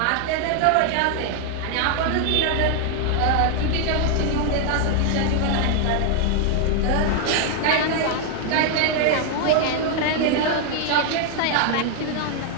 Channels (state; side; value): different; both; correlation 0.00